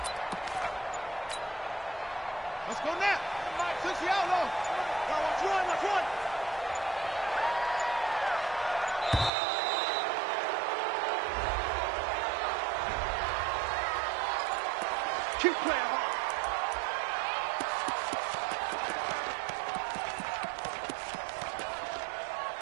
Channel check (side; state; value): left; drops out; at 9.3 s